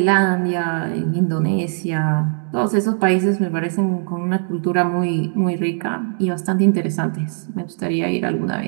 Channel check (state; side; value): silent; left; 60 dB below the other